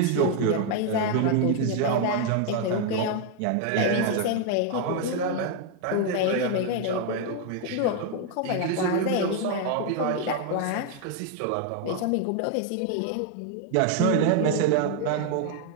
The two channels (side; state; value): both; different; correlation 0.00